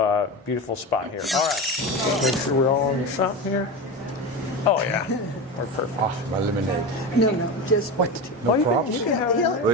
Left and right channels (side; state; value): both; normal; correlation 0.22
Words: beautiful spot here. All right, make sure we're all on the shop here. Oh yeah, we're perfect. Oh, my lemonade. No, just what? No props? You can have He'll-